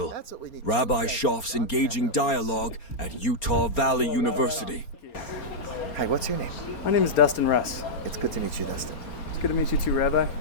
That's what we need. Rabbi Shoff's Engaging Dialogue at Utah Valley University. Hi, what's your name? My name is Dustin Russ. It's good to meet you, Dustin. It's good to meet you too, Rabbi.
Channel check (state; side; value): late; right; 4.3 ms